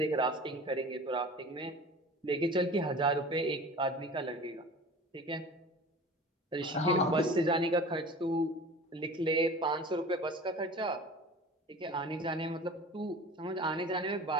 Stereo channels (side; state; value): both; normal; correlation 0.39